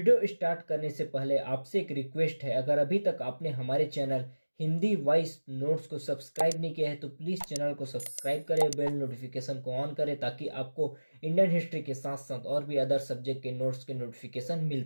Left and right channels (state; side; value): inverted; both; correlation -1.00